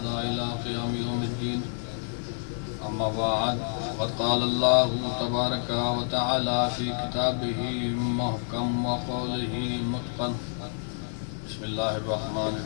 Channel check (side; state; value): right; silent; digital silence